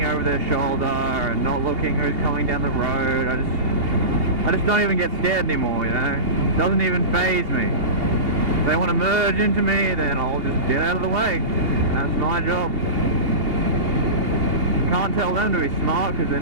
over their shoulder and not looking who's coming down the road, I just don't even get scared anymore, you know? It doesn't even faze me. If they want to merge into me, then I'll just get out of the way. That's my job. Can't tell them to be smart because they're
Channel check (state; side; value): late; left; 2.8 ms